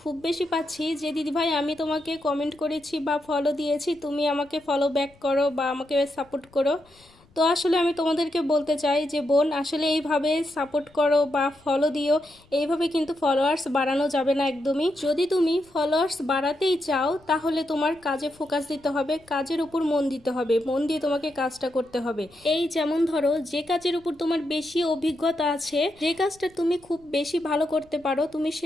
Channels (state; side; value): noise; left; rumble, 30 dB below the sound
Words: খুব বেশি পাচ্ছি যে দিদিভাই আমি তোমাকে কমেন্ট করেছি বা ফলো দিয়েছি, তুমি আমাকে ফলো ব্যাক করো বা আমাকে সাপোর্ট করো। তো আসলে আমি তোমাদেরকে বলতে চাই যে বোন, আসলে এইভাবে সাপোর্ট করো বা ফলো দিও, এইভাবে কিন্তু ফলোয়ার্স বাড়ানো যাবে না একদমই। যদি তুমি ফলোয়ার্স বাড়াতেই চাও তাহলে তোমার কাজে ফোকাস দিতে হবে, কাজের উপর মন দিতে হবে, মন দিয়ে তোমাকে কাজটা করতে হবে। এই যেমন ধরো, যে কাজের উপর তোমার বেশি অভিজ্ঞতা আছে, যে কাজটা তুমি খুব বেশি ভালো করতে পারো, তুমি